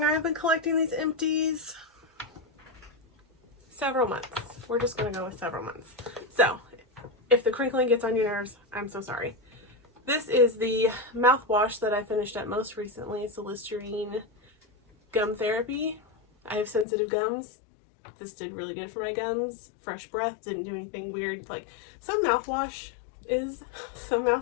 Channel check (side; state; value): right; drops out; at 16.9 s